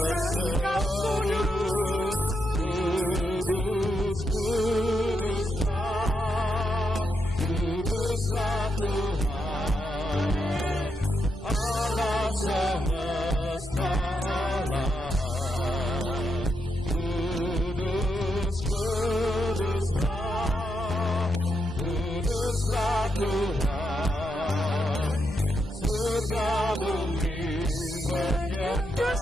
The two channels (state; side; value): normal; both; correlation 0.83